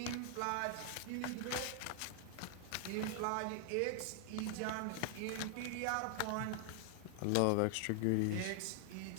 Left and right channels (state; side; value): different; both; correlation 0.00